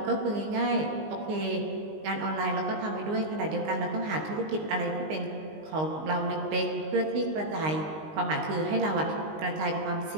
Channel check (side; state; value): left; late; 19 ms